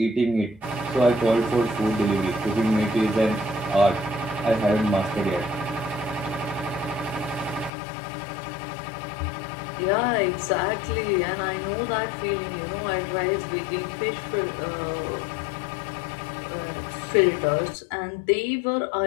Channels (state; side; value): drops out; right; at 7.7 s